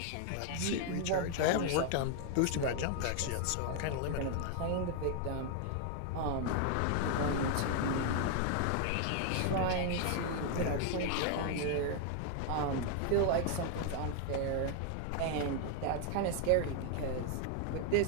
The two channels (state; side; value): different; both; correlation 0.00